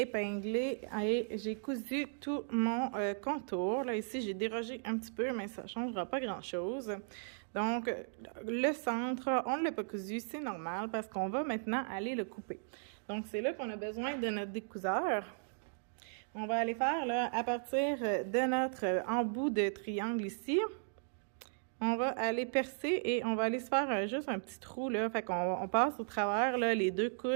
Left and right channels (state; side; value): silent; left; digital silence